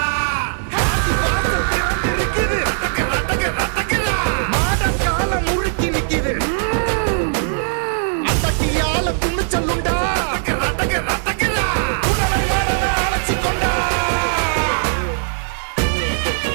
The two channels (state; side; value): silent; left; 59 dB below the other